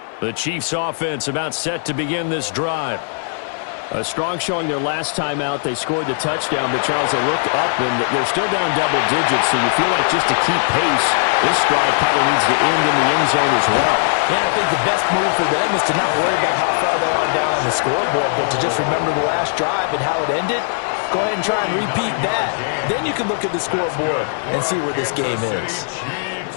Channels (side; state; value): right; silent; 60 dB below the other